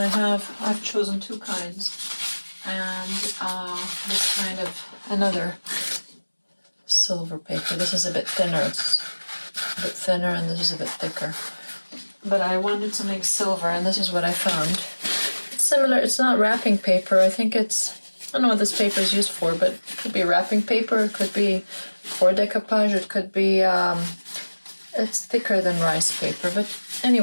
chosen two kinds. And this kind of another silver paper. This is a bit thinner, it's a bit thinner, and this is a bit thicker. But I wanted something silver, and this is what I found. It's similar, it's not wrapping paper. I don't know what this paper is used for, but it could be wrapping paper, it could be for decoupage, it could be, it's thicker than rice paper. But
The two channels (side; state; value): both; inverted; correlation -1.00